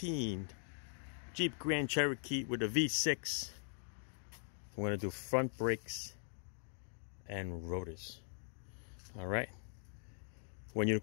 Jeep Grand Cherokee with a V6. I'm going to do front brakes and rotors. All right. When you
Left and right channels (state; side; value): silent; right; 50 dB below the other